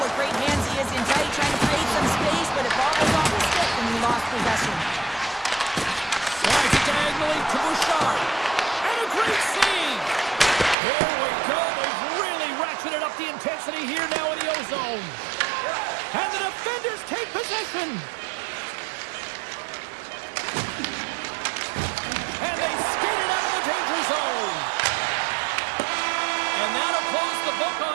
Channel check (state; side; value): drops out; left; at 10.8 s